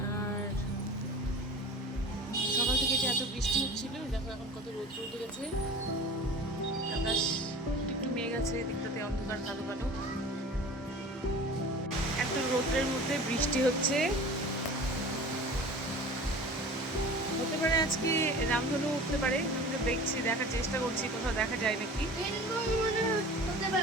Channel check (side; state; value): both; normal; correlation 0.39